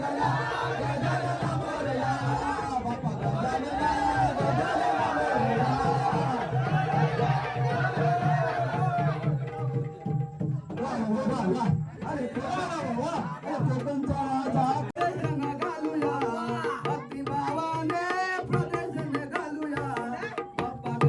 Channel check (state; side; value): identical; both; correlation 1.00